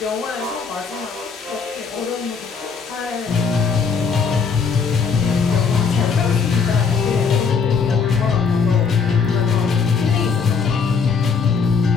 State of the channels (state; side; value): quieter; right; 5.6 dB